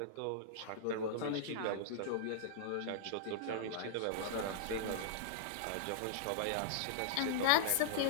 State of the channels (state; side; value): different; both; correlation -0.01